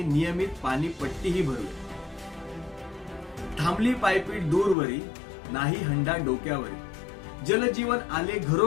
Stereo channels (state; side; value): drops out; right; at 4.8 s